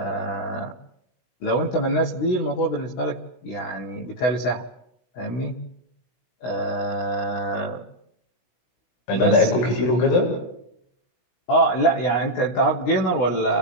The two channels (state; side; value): late; right; 16 ms